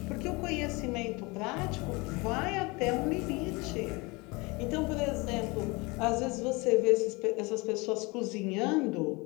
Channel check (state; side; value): quieter; right; 25.9 dB